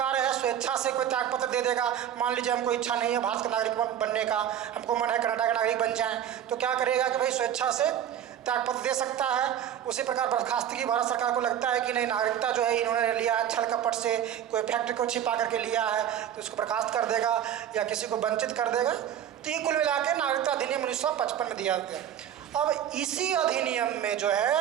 है स्वेच्छा से कोई त्यागपत्र दे देगा। मान लीजिए हमको इच्छा नहीं है भारत का नागरिक बनने का, हमको मन है कनाडा का नागरिक बन जाए, तो क्या करेगा कि भाई स्वेच्छा से त्यागपत्र दे सकता है। उसी प्रकार बर्खास्तगी भारत सरकार को लगता है कि नहीं नागरिकता जो है इन्होंने लिया है छल कपट से, कोई फैक्ट्री को छिपा करके लिया है तो उसको बर्खास्त कर देगा या किसी को वंचित कर देगा। तो ये कुल मिला के नागरिकता अधिनियम 1955 में दिया गया। अब इसी अधिनियम में जो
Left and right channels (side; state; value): left; quieter; 10.1 dB